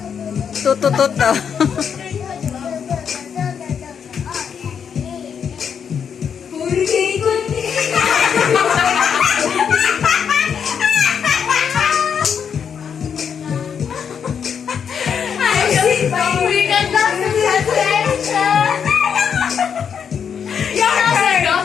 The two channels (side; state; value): right; quieter; 7.3 dB